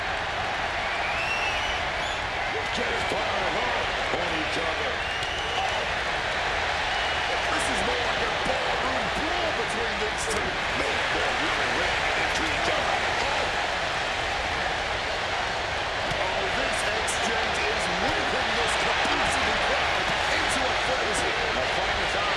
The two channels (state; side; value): identical; both; correlation 1.00